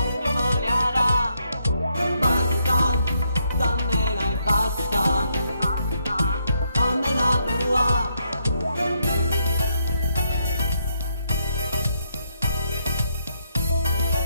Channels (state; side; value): inverted; both; correlation -0.76